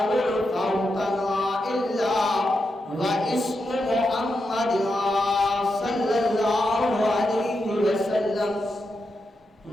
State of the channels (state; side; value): normal; both; correlation 0.86